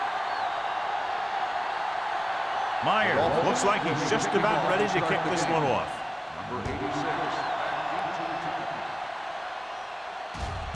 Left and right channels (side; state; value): both; identical; correlation 1.00